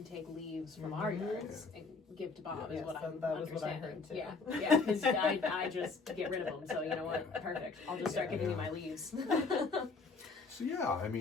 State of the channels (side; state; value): right; quieter; 4.2 dB